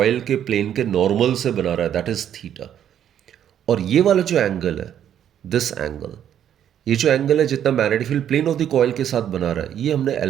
के प्लेन के नॉर्मल से बना रहा है दैट इज थीटा। और ये वाला जो एंगल है, दिस एंगल, ये जो एंगल है जितना magnetic field plane of the coil के साथ बना रहा है, ये हमने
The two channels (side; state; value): left; quieter; 10.0 dB